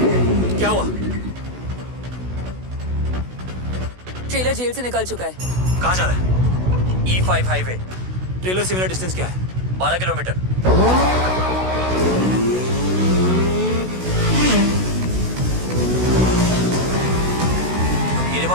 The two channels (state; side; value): late; left; 16 ms